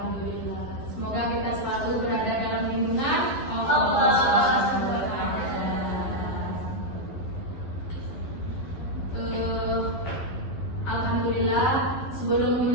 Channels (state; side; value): late; right; 11 ms